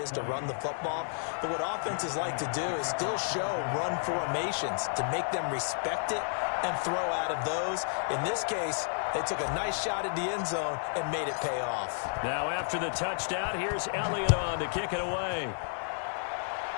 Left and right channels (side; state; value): right; silent; 55 dB below the other